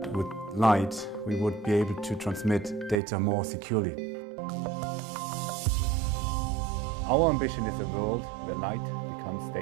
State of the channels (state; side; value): drops out; left; at 3.0 s